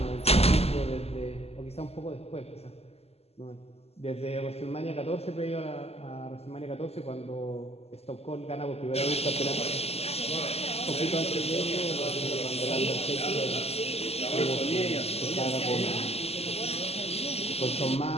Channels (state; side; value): late; right; 0.29 ms